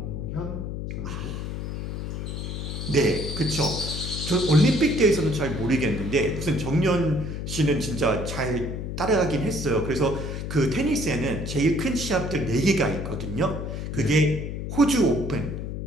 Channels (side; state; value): left; noise; hum, 5 dB below the sound